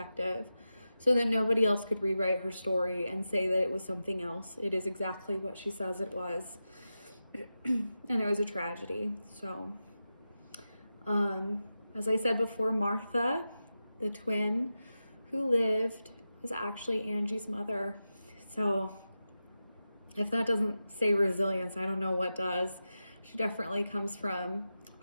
so that nobody else could rewrite her story and say that it was something else. It is exactly what she says it was. And it was a tragedy. So, as I said before, Martha, the twin who lived, was actually Angie's mother. So if that doesn't say resilience, I don't know what does. She definitely comes from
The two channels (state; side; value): inverted; both; correlation -0.92